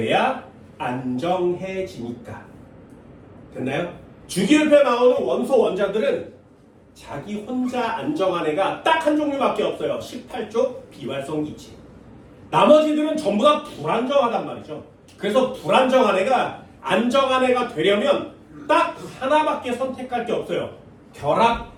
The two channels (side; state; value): both; identical; correlation 1.00